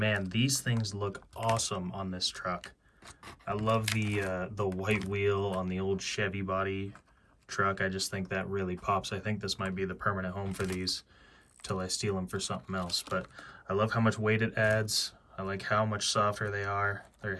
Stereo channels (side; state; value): both; identical; correlation 1.00